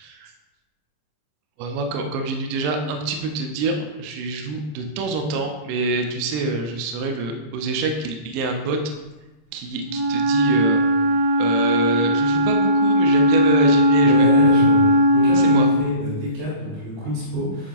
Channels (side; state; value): left; late; 27 ms